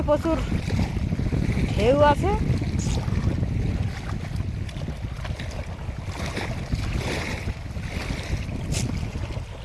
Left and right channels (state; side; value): identical; both; correlation 1.00